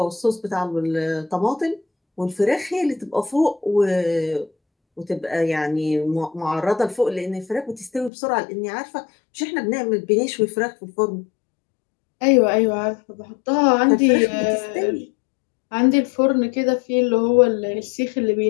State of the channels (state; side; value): drops out; right; at 8.1 s